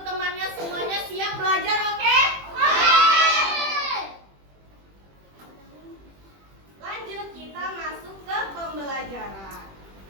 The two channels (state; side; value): late; left; 21 ms